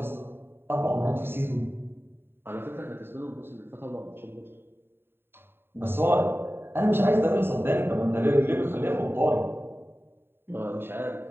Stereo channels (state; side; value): late; left; 0.11 ms